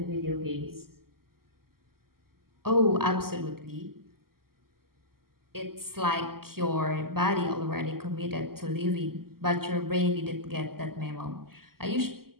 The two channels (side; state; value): left; late; 0.93 ms